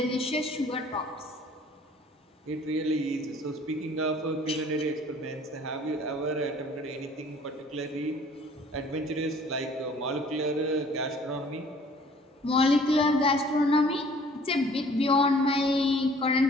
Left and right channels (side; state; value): both; normal; correlation 0.53